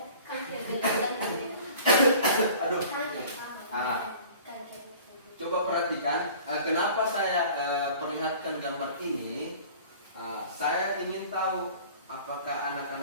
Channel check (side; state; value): both; inverted; correlation -0.46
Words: Aduh. Coba perhatikan. Kenapa saya perlihatkan gambar ini? Saya ingin tahu apakah